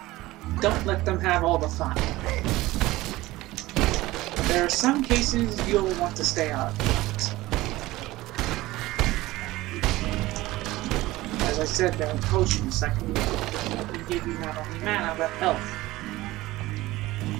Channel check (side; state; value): left; quieter; 18.3 dB